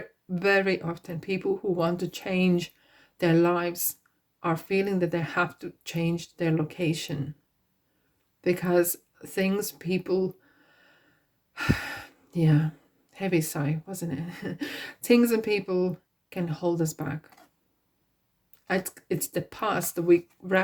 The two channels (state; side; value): identical; both; correlation 1.00